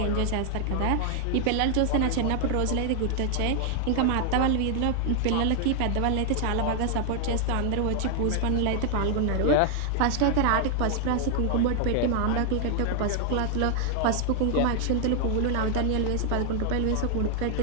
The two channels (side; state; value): both; different; correlation 0.00